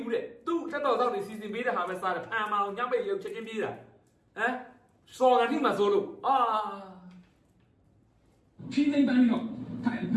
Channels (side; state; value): both; identical; correlation 1.00